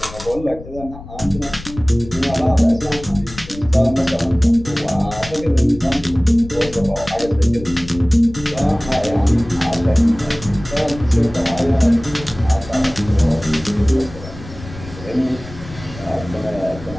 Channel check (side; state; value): left; noise; rumble, 15 dB below the sound